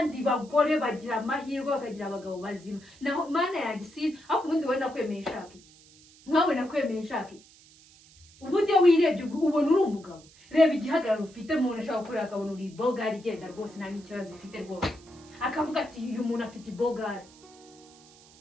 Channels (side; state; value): right; noise; hiss, 25 dB below the sound